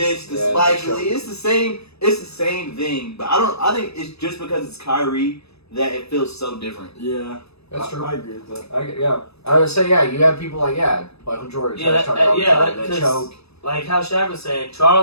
to Yeah, Spike sure. Lee. It's the same thing. But I think it's just because it's Kyrie that it feels so different. Yeah, That's true. I agree with that. I would say, you have people like, Michael Jordan, Yeah, talking that- all the yeah, time, that- that 'cause- choke. like how Shaq was saying.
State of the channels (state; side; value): late; right; 0.79 ms